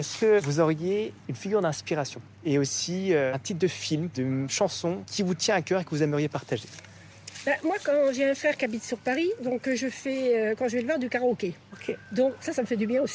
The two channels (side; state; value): both; identical; correlation 1.00